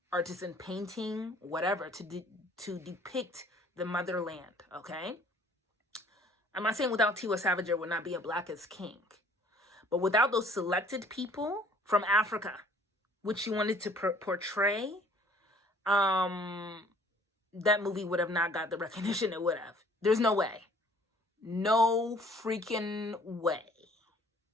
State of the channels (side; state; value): both; normal; correlation 0.56